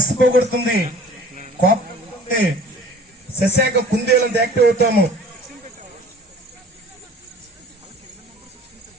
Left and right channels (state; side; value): normal; both; correlation 0.47